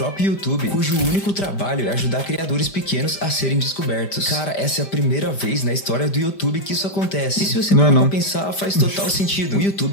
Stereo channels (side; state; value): right; late; 5.1 ms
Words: YouTube, cujo único trabalho é ajudar criadores pequenos a serem descobertos. Cara, essa é a primeira vez na história do YouTube que isso acontece. E se você parar pra pensar, faz total sentido. O